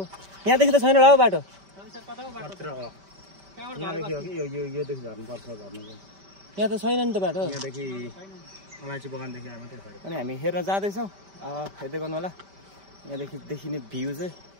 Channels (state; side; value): late; left; 5.1 ms